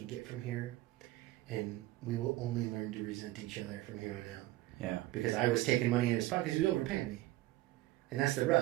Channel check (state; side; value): quieter; left; 17.1 dB